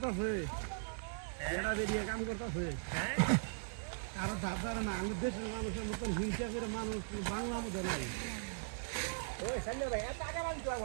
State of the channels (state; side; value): silent; left; 52 dB below the other